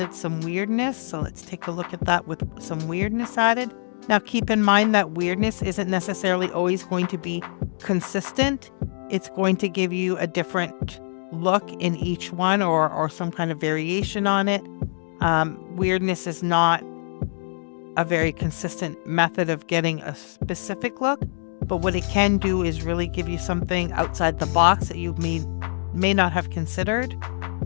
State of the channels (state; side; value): silent; right; 62 dB below the other